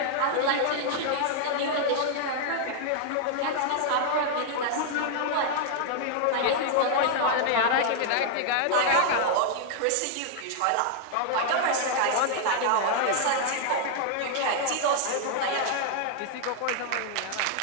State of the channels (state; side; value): different; both; correlation 0.00